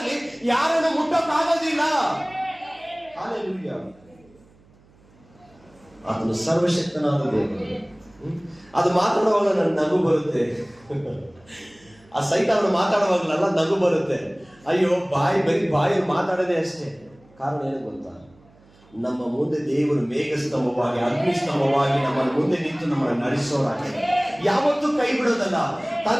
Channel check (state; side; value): noise; right; hum, 29 dB below the sound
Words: ಯಾರನ್ನು ಮುಟ್ಟಕ್ಕಾಗೋದಿಲ್ಲ. ಆತನು ಸರ್ವಶಕ್ತನಾದ ದೇವರು. ಅದು ಮಾತಾಡುವಾಗ ನನ್ನ ನಗು ಬರುತ್ತೆ. ಆ ಸೈತಾನ ಮಾತಾಡುವಾಗಲೆಲ್ಲ ನಗು ಬರುತ್ತೆ. ಅಯ್ಯೋ ಬರೀ ಬಾಯಲ್ಲಿ ಮಾತಾಡೋದೇ ಅಷ್ಟೇ. ಕಾರಣ ಏನು ಗೊತ್ತಾ? ನಮ್ಮ ಮುಂದೆ ದೇವರು ಮೇಘಸ್ತಂಭವಾಗಿ, ಅಗ್ನಿಸ್ತಂಭವಾಗಿ ನಮ್ಮ ಮುಂದೆ ನಿಂತು ನಮ್ಮನ್ನು ನಡೆಸೋರಾಗಿ, ಯಾವತ್ತೂ ಕೈ ಬಿಡೋದಲ್ಲ.